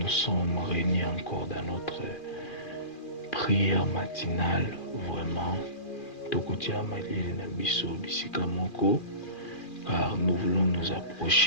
sommes réunis encore dans notre prière matinale, vraiment, Tokotia Malili Nabiso Bisikamoko, car nous voulons nous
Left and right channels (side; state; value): right; late; 2.4 ms